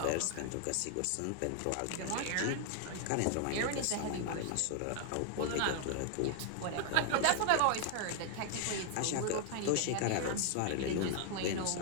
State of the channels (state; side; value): different; both; correlation 0.00